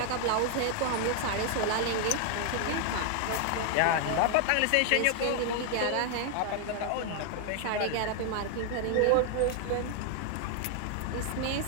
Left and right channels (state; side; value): different; both; correlation 0.00